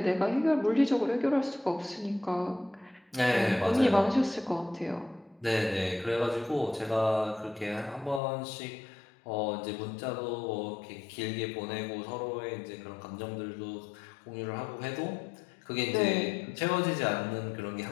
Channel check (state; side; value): drops out; right; at 8.2 s